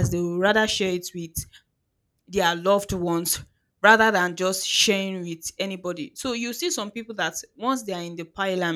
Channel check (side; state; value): both; identical; correlation 1.00